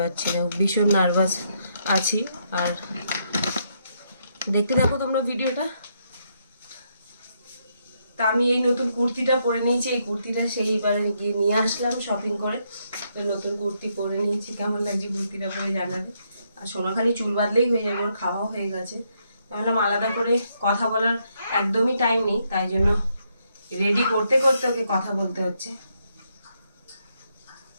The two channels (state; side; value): inverted; both; correlation -0.76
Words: না, ভীষণ নার্ভাস আছি। আর দেখতে থাকো তোমরা ভিডিওটা। তা আমি এই নতুন কুর্তিটা পরে নিয়েছি। এই কুর্তিটা সেইবার গিয়ে নিয়ে আসলাম শপিং করে। তো নতুন কুর্তি পরে নিয়েছি, কেমন লাগছে কুর্তিটা পরে জানাবে। আর সোনা খালি চুল বাঁধলেই হয়ে যাবে, ওর খাওয়াও হয়ে গেছে। ভাবলাম আলাদা করে কথা বলার একদমই টাইম নেই, তাই জন্য রেডি করতে করতে ওকে কথা বলতে হচ্ছে।